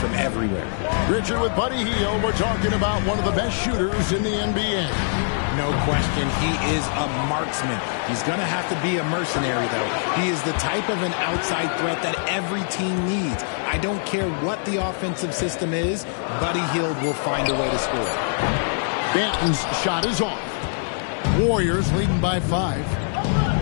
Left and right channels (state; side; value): silent; right; digital silence